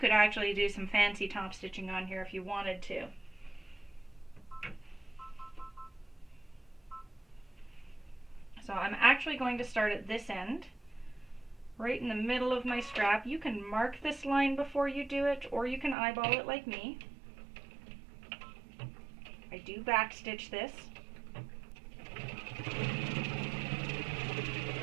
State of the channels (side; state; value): left; drops out; at 16.0 s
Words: actually do some fancy top stitching on here if you wanted to. So I'm actually going to start at this end, right in the middle of my strap. You can mark this line before you do it, or you can eyeball it like me. I do back stitch this.